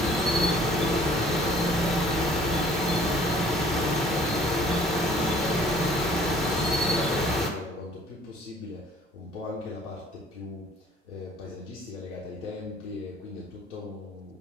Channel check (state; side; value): normal; both; correlation 0.54